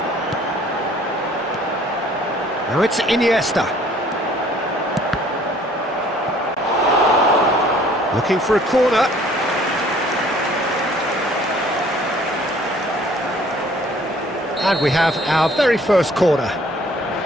Now it's Iniesta. Looking for a corner. And we have our very first corner.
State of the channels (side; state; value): both; normal; correlation 0.56